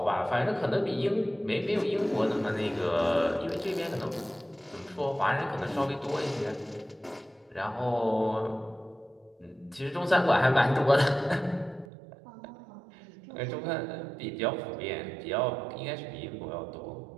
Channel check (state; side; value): drops out; left; at 11.9 s